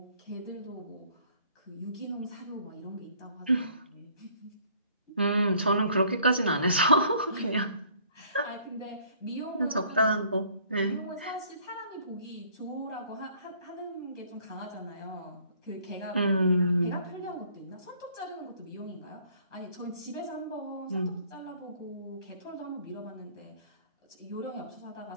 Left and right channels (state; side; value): inverted; both; correlation -0.59